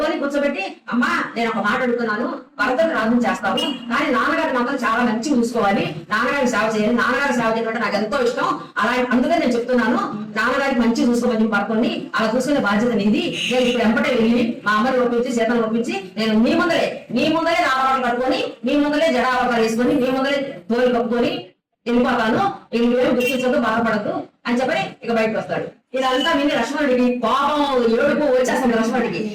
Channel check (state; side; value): identical; both; correlation 1.00